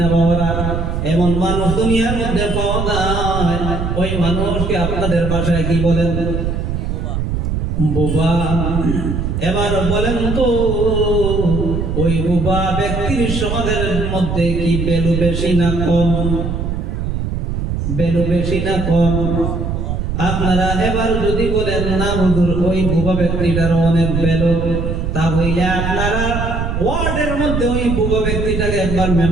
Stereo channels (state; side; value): noise; right; rumble, 2 dB below the sound